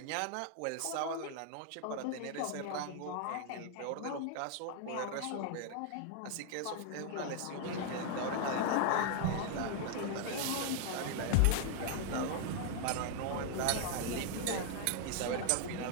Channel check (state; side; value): different; both; correlation 0.00